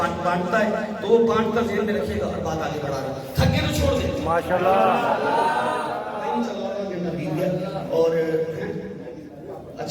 بانٹتا ہے تو وہ بانٹ کر ذہن میں رکھیے گا اور بات آگے بڑھا رہا ہے. تھک گئے تو چھوڑ دیں. ماشاءاللہ. اور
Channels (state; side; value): identical; both; correlation 1.00